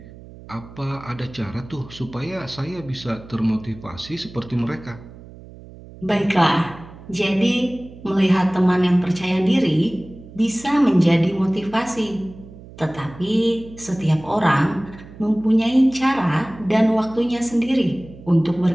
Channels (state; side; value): noise; right; hum, 18 dB below the sound